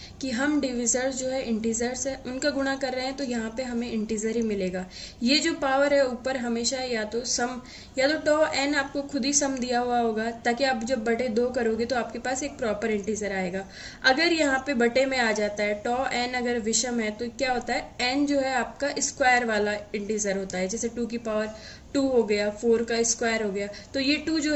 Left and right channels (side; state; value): both; identical; correlation 1.00